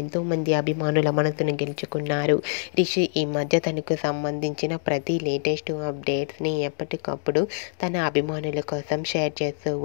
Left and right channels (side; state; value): right; silent; 62 dB below the other